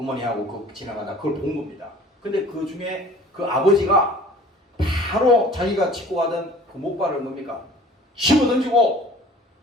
그 지나가다 그걸 본 겁니다. 근데 그 중에 그 아버지가 바로 자기가 짚고 가던 그 목발을 뭡니까? 집어 던지고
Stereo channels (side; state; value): both; normal; correlation 0.48